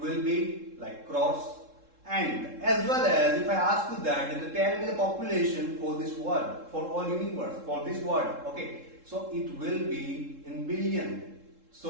be like crores. And as well as if I ask you that, then tell me the population for this world, for all universe, for this world. Okay. So it will be in billion.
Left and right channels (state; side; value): late; left; 3.7 ms